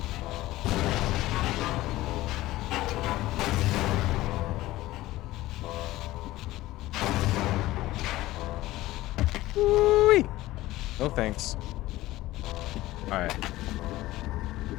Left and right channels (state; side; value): quieter; right; 17.1 dB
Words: Woo-wee. No thanks. Alright.